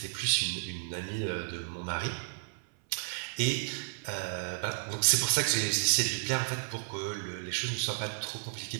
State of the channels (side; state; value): left; silent; 56 dB below the other